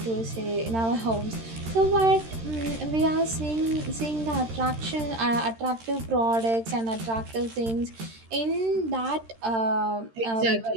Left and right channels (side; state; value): left; late; 13 ms